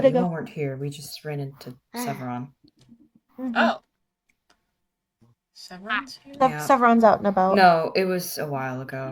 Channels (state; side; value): identical; both; correlation 1.00